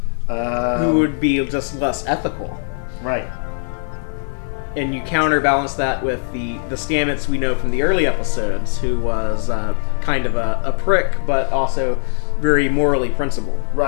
Who would be just less ethical. Right. And you counterbalance that with the Stamets we know from the early episodes, who was kind of a prick, but also very morally principled.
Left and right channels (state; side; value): silent; right; 66 dB below the other